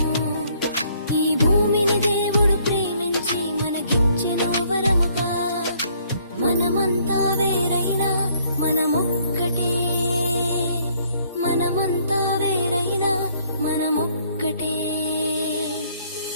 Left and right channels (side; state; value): both; inverted; correlation -0.64